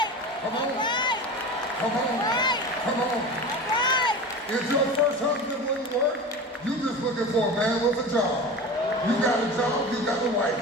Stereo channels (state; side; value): normal; both; correlation 0.31